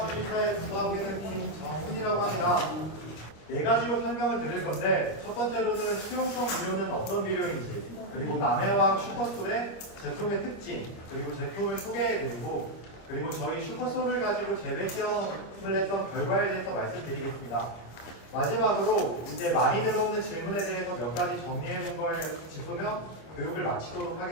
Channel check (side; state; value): right; late; 25 ms